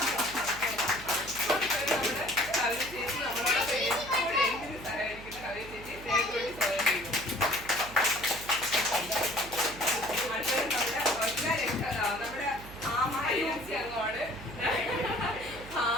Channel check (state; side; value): noise; right; hum, 15 dB below the sound